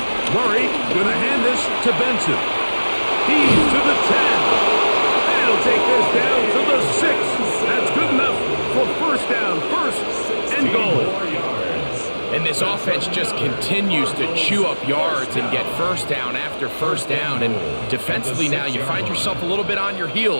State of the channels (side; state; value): both; inverted; correlation -1.00